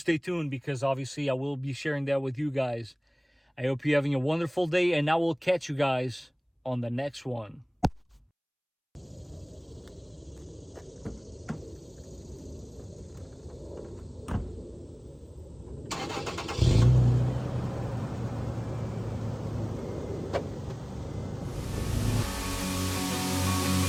tuned, because obviously I will be sharing that with you guys. I hope you're having a wonderful day, and I will catch you guys on the next one.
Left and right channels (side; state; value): both; identical; correlation 1.00